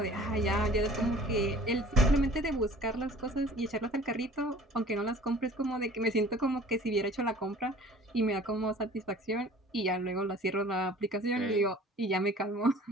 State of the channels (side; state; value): both; normal; correlation 0.47